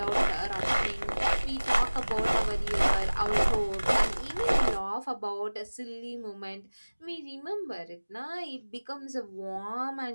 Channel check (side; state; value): both; inverted; correlation -1.00